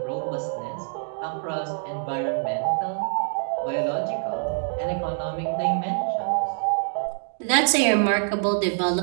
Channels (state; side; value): silent; left; digital silence